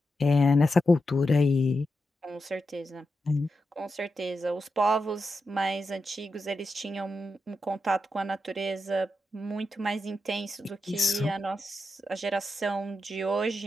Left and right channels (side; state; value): both; normal; correlation 0.88